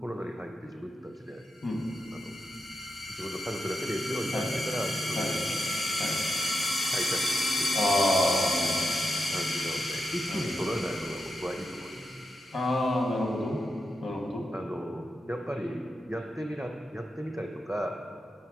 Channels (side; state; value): both; normal; correlation 0.87